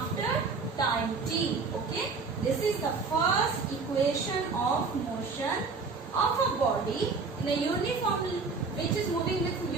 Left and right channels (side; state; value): left; quieter; 4.5 dB